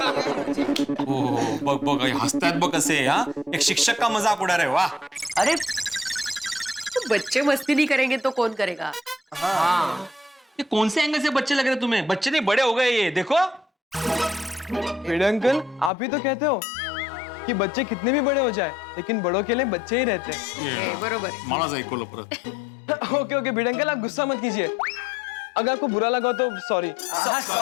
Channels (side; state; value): right; drops out; at 15.9 s